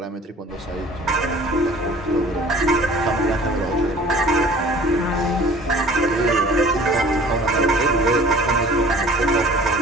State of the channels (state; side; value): normal; both; correlation 0.48